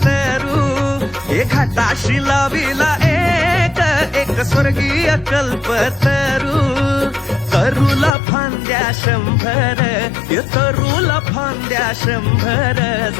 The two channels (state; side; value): drops out; right; at 8.1 s